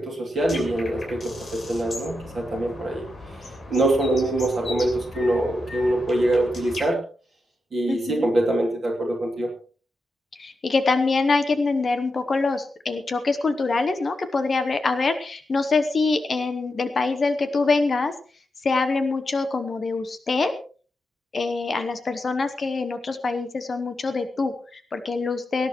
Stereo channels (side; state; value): both; normal; correlation 0.87